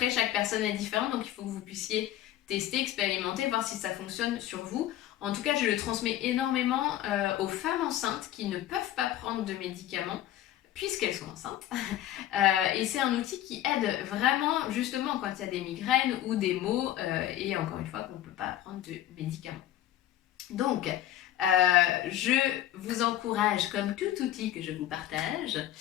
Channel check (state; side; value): quieter; right; 12.9 dB